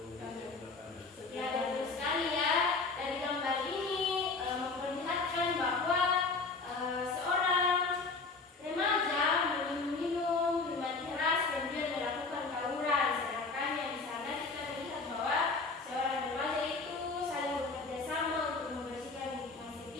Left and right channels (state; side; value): quieter; right; 4.0 dB